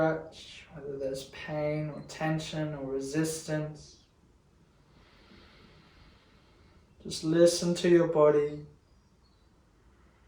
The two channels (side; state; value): both; identical; correlation 1.00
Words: whether there's pain or tension or resistance. Just listen to your body.